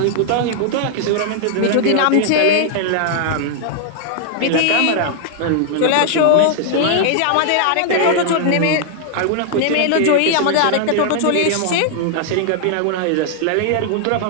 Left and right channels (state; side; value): different; both; correlation 0.00